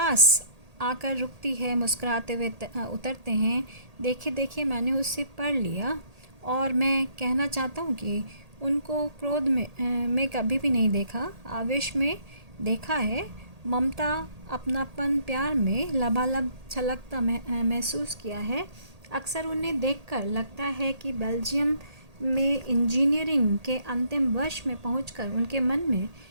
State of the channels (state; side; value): late; left; 1.8 ms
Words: आकर रुकती है, मुस्कुराते हुए उतरते हैं। देखिए देखिए, मैंने उससे पढ़ लिया, और मैं कहना चाहता हूँ कि उनको क्रोध में कभी भी नहीं देखा, आवेश में देखा है। ममता, अपनापन, प्यार में लबालब छलकता महसूस किया है। अक्सर उन्हें देखकर लगता है कि बेल्जियम में इंजीनियरिंग के अंतिम वर्ष में पहुंचकर उनके मन में